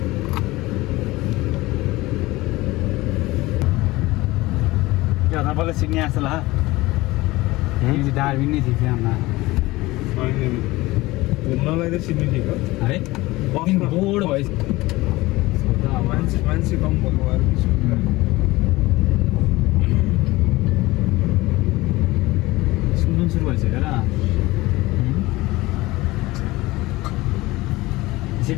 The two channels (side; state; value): right; quieter; 19.9 dB